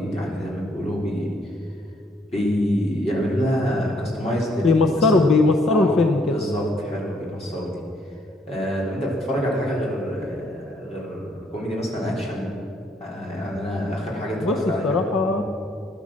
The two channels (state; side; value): normal; both; correlation 0.68